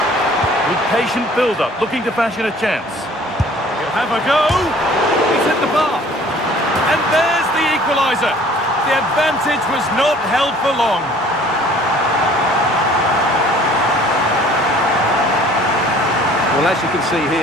With patient build-up, looking to fashion a chance. Have a go. He's hit the bar. And there's the equaliser. The advantage was not held for long. Well, as you can see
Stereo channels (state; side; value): normal; both; correlation 0.52